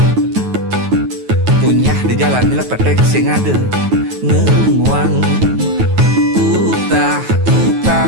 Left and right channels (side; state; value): left; late; 9.3 ms